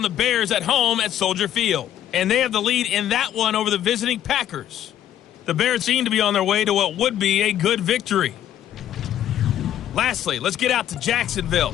the Bears at home at Soldier Field. And they have the lead in that one over the visiting Packers. The Bears seem to be on their way to what would be a good victory. Lastly, let's get out to Jacksonville.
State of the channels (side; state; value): right; quieter; 11.3 dB